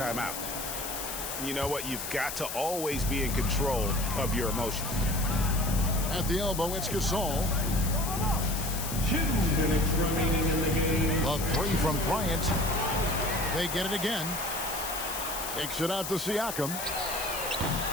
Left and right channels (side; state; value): left; noise; hiss, 6 dB below the sound